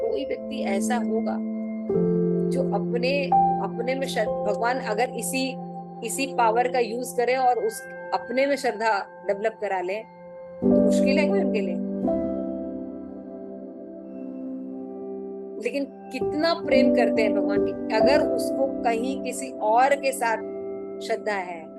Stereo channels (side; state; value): both; identical; correlation 1.00